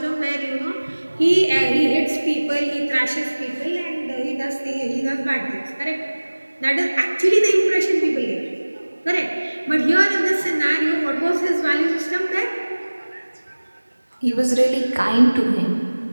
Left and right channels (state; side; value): inverted; both; correlation -1.00